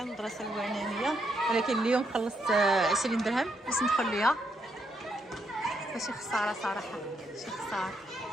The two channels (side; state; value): both; normal; correlation 0.78